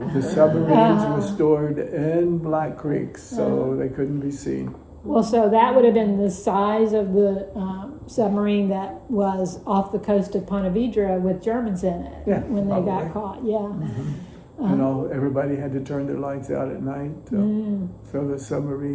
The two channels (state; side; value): identical; both; correlation 1.00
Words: The submarines were stored in Black Creek, so they couldn't be seen. Well, so that would have been the size of the submarine that was off the coast of Ponte Vedra with Germans in it when they probably. got caught. Yeah. Everybody had to turn their lights out at night, so the